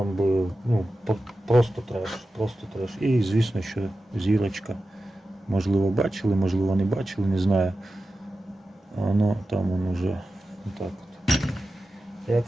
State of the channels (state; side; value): normal; both; correlation 0.93